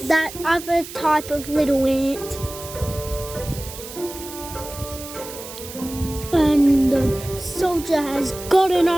other type of little ant. And the soldier has gotten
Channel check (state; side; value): noise; right; hiss, 13 dB below the sound